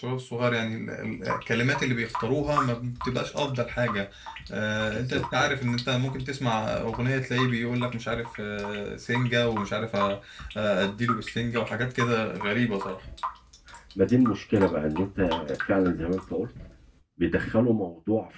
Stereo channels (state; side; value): identical; both; correlation 1.00